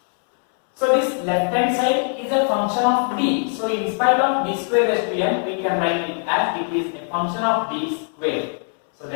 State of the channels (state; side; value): silent; right; 55 dB below the other